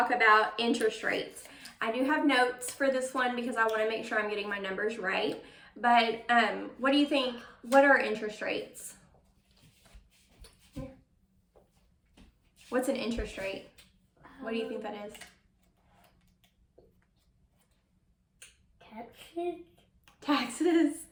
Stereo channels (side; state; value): both; identical; correlation 1.00